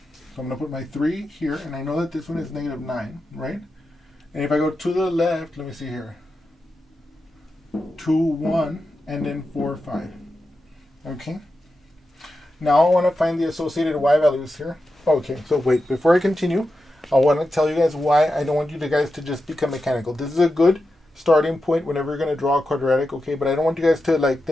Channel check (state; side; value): normal; both; correlation 0.90